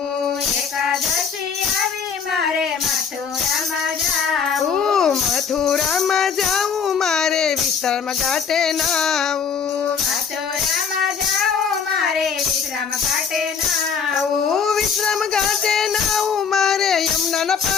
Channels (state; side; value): quieter; right; 6.5 dB